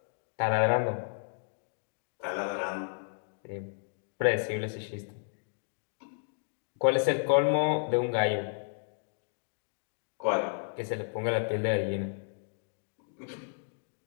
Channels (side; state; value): right; silent; digital silence